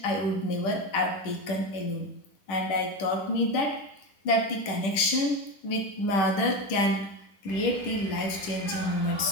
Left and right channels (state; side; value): late; right; 10 ms